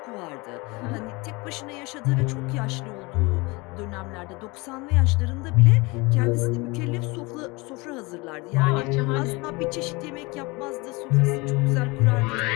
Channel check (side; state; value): right; quieter; 25.1 dB